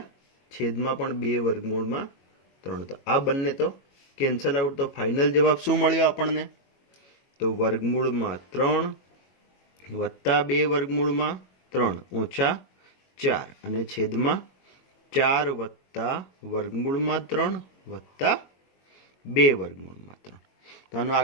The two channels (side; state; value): right; late; 22 ms